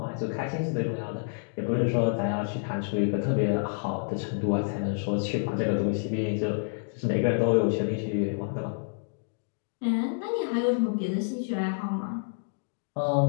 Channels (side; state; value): right; silent; digital silence